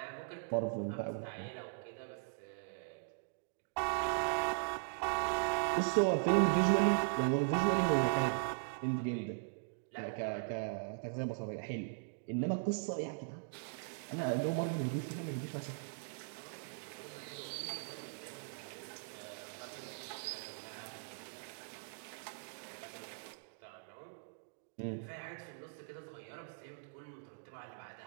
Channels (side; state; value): left; silent; digital silence